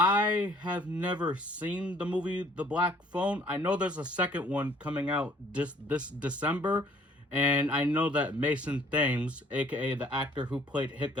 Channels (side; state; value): both; normal; correlation 0.58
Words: have never seen the movie The Black Phone. I know there's a second one coming out this December, and I know that Mason Thames, aka the actor who played